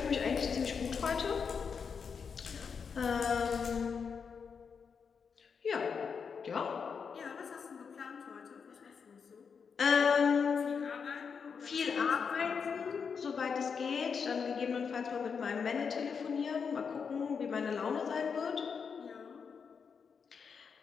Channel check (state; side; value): quieter; right; 6.1 dB